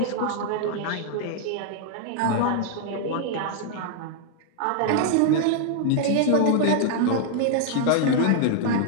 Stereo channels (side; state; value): both; different; correlation 0.00